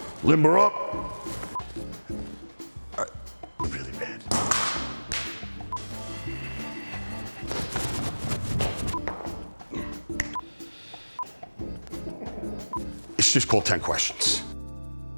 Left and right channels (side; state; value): both; inverted; correlation -1.00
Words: limber up. Really bad. It's just called 10 questions.